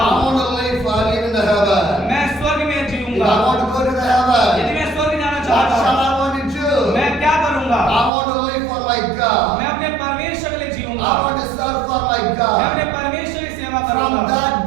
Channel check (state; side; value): drops out; left; at 8.1 s